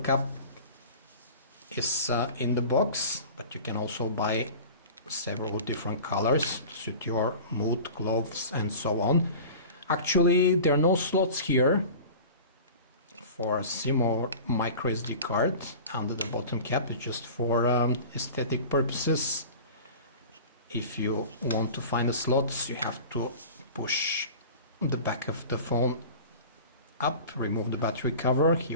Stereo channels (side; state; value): both; inverted; correlation -0.38